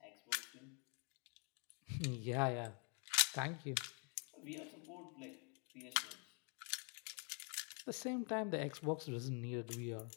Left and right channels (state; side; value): quieter; right; 39.5 dB